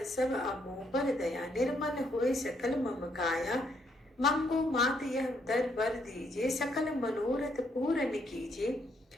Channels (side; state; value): both; normal; correlation 0.73